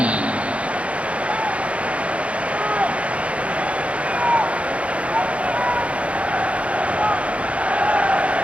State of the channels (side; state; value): left; late; 0.063 ms